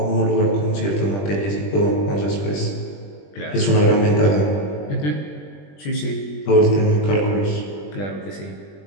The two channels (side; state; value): right; late; 20 ms